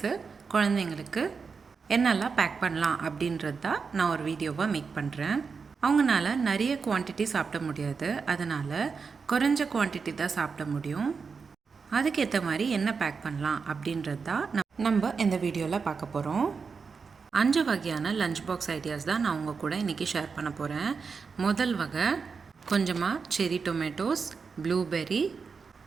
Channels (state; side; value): quieter; left; 5.3 dB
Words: குழந்தைங்களுக்கு என்னெல்லாம் பேக் பண்ணலாம் அப்படின்றது தான் நான் ஒரு வீடியோவாக மேக் பண்ணுறேன். அவங்களால நிறைய குவான்டிட்டி சாப்பிட முடியாது, அதனால் குறைஞ்ச குவான்டிட்டி தான் சாப்பிட முடியும். அதுக்கேற்ற மாதிரி என்ன பேக் பண்ணலாம் அப்படின்றது தான் நம்ம இந்த வீடியோவில் பார்க்க போகிறோம். 5 வகையான லஞ்ச் பாக்ஸ் ஐடியாஸ் தான் நான் உங்கள் கூட இன்றைக்கி ஷேர் பண்ண போகிறேன். முதல் வகை கொஞ்சமாக செரி டொமேட்டோஸ், ப்ளூபெர்ரி,